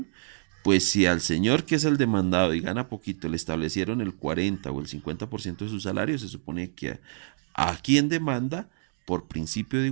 pues si al señor que es el demandado y gana poquito le establecieron el 40 o el 50% de su salario, se supone que a quien demanda, por principio de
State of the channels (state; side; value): silent; left; digital silence